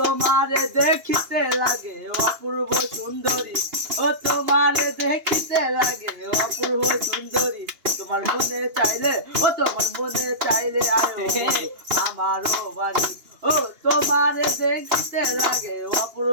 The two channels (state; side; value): late; left; 2.8 ms